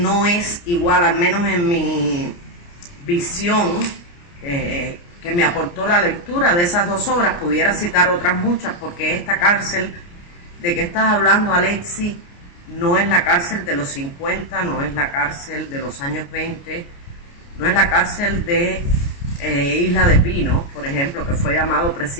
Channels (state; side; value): late; right; 29 ms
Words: es igual, al menos en mi visión, que me aportó la lectura de esas dos obras? Pudiera citar otras muchas, porque esta cárcel de que estás hablando, Alexis, no es la cárcel de los 50, no es la cárcel de los años 20, no es la cárcel de Isla de Pino, por ejemplo, que fue llamado